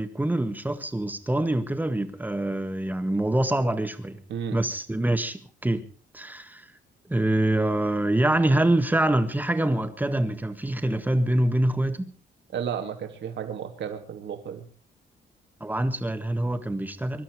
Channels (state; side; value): normal; both; correlation 0.90